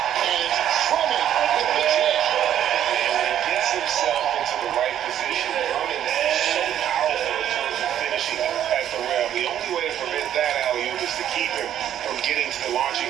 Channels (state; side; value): quieter; left; 10.7 dB